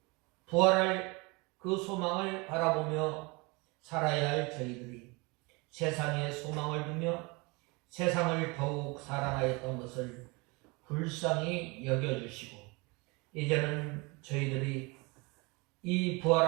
부활할 그 소망을 바라보며 살아야 할 저희들이 세상에 소망을 두며 세상을 더욱 사랑하였던 것을 불쌍히 여겨주시고, 이제는 저희들이 이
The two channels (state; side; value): quieter; left; 27.2 dB